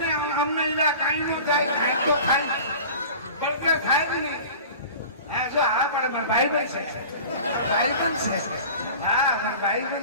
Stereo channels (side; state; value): both; inverted; correlation -0.39